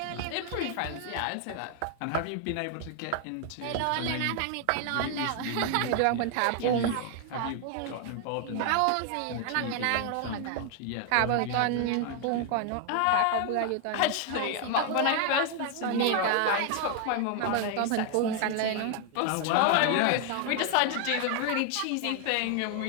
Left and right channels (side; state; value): both; different; correlation 0.00